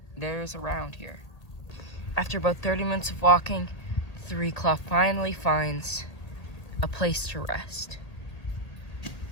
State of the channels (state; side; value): late; right; 1.8 ms